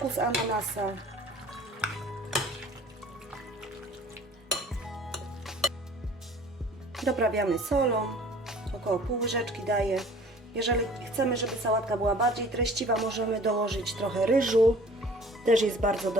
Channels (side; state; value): both; normal; correlation 0.49